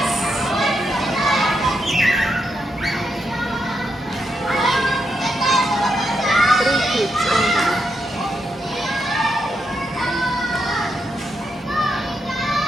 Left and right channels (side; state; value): both; normal; correlation 0.83